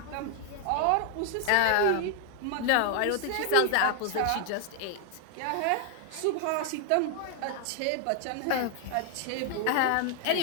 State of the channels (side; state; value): both; different; correlation 0.00